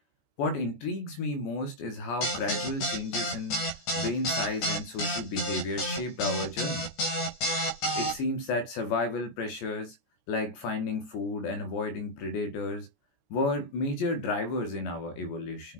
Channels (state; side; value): late; right; 14 ms